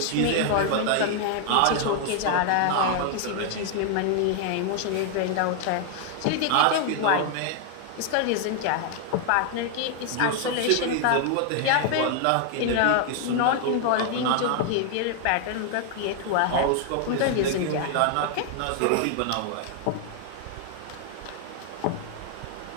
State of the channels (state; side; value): different; both; correlation 0.00